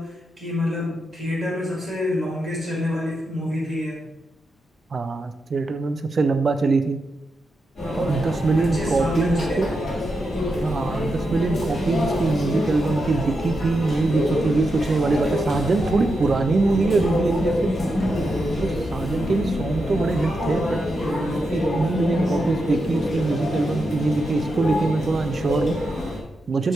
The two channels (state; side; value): normal; both; correlation 0.86